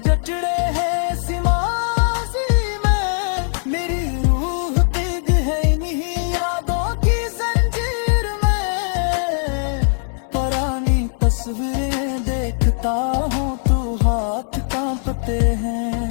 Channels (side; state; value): right; silent; digital silence